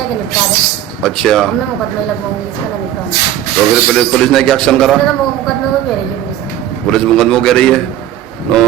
निपटा दे। अच्छा, अब मैं मुकदमे लगवाऊंगी इसका, ना निपटाऊंगी। तो फिर पुलिस ने क्या एक्शन करा? तो मुकदमे को कह रही है पुलिस। पुलिस मुकदमा कह रही है।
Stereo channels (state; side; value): quieter; left; 11.9 dB